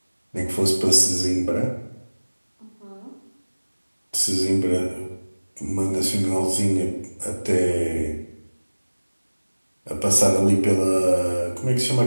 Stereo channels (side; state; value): both; inverted; correlation -1.00